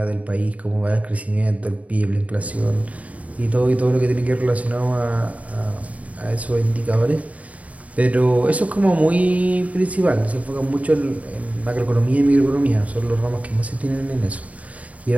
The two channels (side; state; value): left; late; 0.069 ms